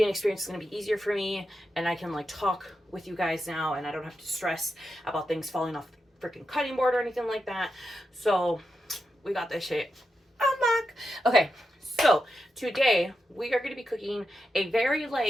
experience is going to be easier for me, and I can like talk with you guys now, and I don't have to stress about things falling off the freaking cutting board or anything like that. So we got this shit unlocked. Okay, so today we are going to be cooking a very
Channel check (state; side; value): normal; both; correlation 0.88